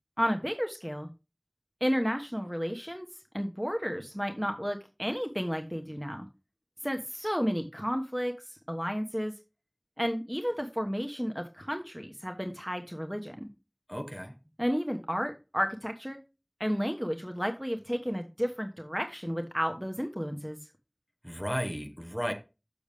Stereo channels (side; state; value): both; identical; correlation 1.00